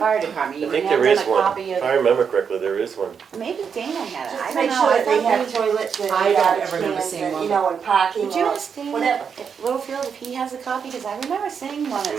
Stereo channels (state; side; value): quieter; left; 6.7 dB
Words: department. I You think can there hand is them a one. copy If of, I remember correctly, there is one. maybe Dana had it, Just I to don't make know. sure I that they thought have maybe- toilets and I don't garbage ever remember cans seeing and, one. you know, and parking Would you or ask Dana whatever. at Littlefield if he has a copy, because I remember seeing one at